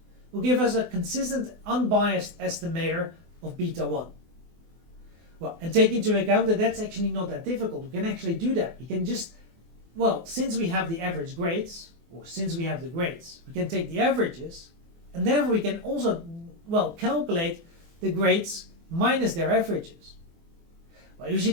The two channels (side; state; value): left; late; 24 ms